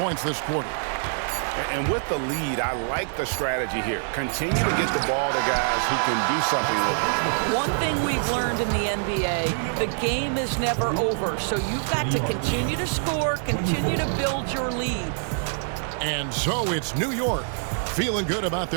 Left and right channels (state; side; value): silent; left; 62 dB below the other